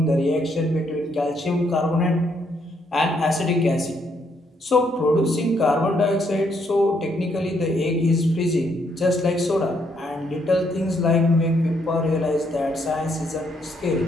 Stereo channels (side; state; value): both; normal; correlation 0.73